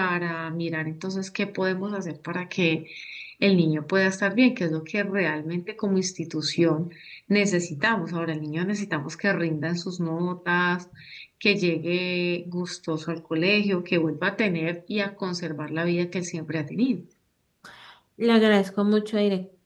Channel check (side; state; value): both; identical; correlation 1.00